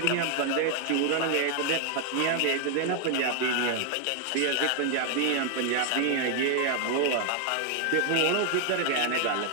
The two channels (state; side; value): different; both; correlation 0.00